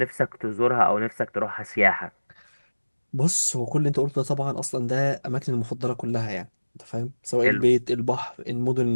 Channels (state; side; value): inverted; both; correlation -1.00